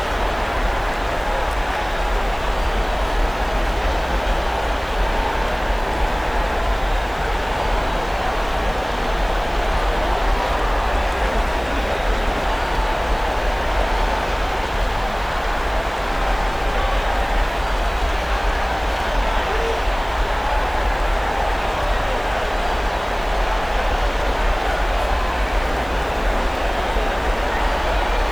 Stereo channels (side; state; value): right; noise; hiss, 25 dB below the sound